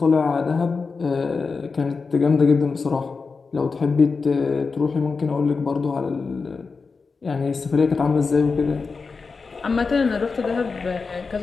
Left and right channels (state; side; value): quieter; right; 4.6 dB